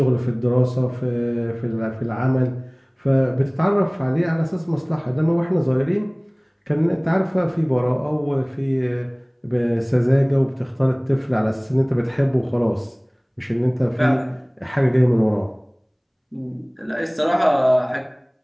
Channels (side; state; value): both; identical; correlation 1.00